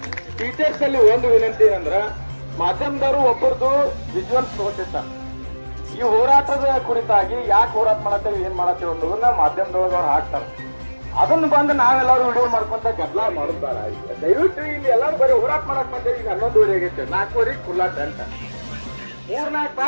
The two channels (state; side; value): inverted; both; correlation -1.00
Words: ಟೀಚರ್ಸ್ ಅಲ್ಲಿ ಒಂದು ವಿನಂತಿ ಏನಂದ್ರ, ಮಾಧ್ಯಮದವರು ಒಬ್ಬರದು ವಿಜುವಲ್ಸ್ ತಗೋತಿರ್ತಾರೆ. ಈ ಹೋರಾಟದ ಕುರಿತಾಗಿ ಯಾಕೆ ಹೋರಾಟ ಮಾಡತ್ತೇವೆ, ಏನ್ ಮಾಡತ್ತೇವೆ ಅನ್ನೋದನ್ನ ಮಾಧ್ಯಮದೊಳಗೆ ಅವ್ರು ಹಾಕ್ತಾರೆ. ಅದನ್ನು ಬಂದು ನಾವೆಲ್ಲರೂ ವಿಡಿಯೋ ಮಾಡ್ಕೊಂತ ಗದ್ದಲ ಮಾಡೋದಾರ. ದಯವಿಟ್ಟು ಇಲ್ಲಿ ಎಲ್ಲರೂ ಬರೀ ಹೋರಾಟ ಮಾಡಕ್ ಬಂದೇವಿ. ಈಗ 11 ಆಗೈತೆ, 4 ಖುಲ್ಲಾ ಟೆಂಟ್, 3-4